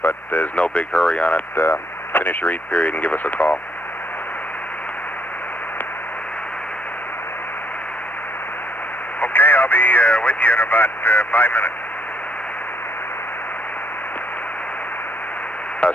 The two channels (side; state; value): both; normal; correlation 0.71